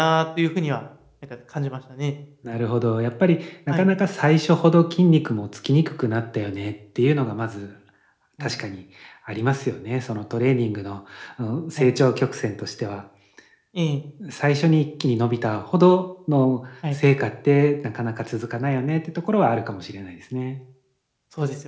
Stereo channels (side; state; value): both; identical; correlation 1.00